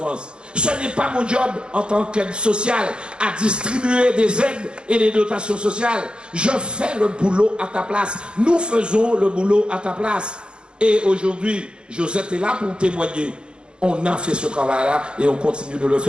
Ce n'est pas mon job en tant qu'aide sociale à distribuer des aides et des dotations sociales. Je fais le boulot à ta place. Nous faisons le boulot à ta place. Et aujourd'hui, Josette est là pour témoigner. On a fait ce travail-là et on continue de le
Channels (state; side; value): late; left; 0.053 ms